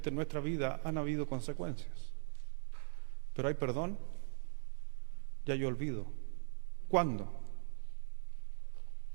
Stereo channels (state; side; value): silent; left; digital silence